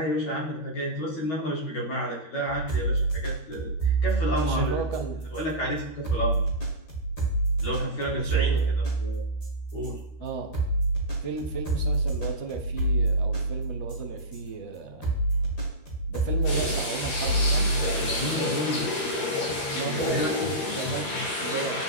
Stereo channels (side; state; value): right; late; 13 ms